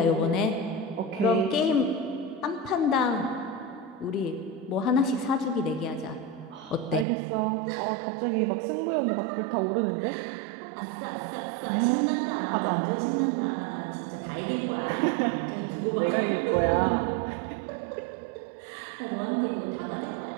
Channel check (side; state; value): left; drops out; at 7.1 s